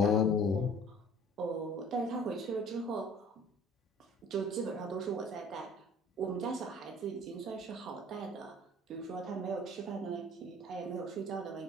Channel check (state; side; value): normal; both; correlation 0.49